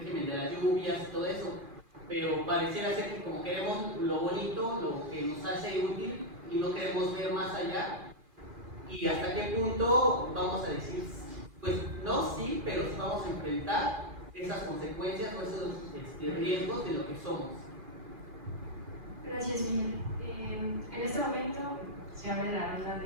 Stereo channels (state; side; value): late; left; 2.4 ms